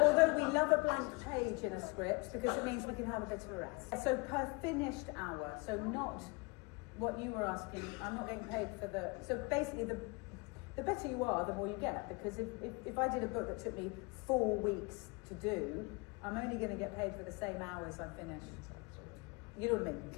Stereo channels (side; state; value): right; quieter; 28.6 dB